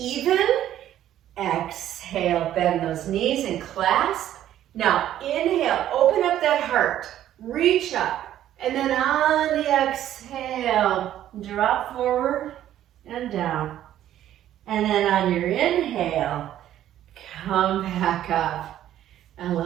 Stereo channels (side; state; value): left; quieter; 12.0 dB